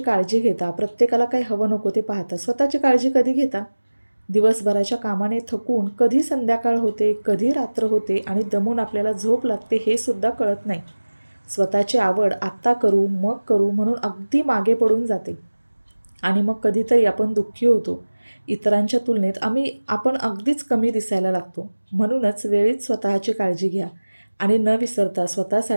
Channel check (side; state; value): both; inverted; correlation -1.00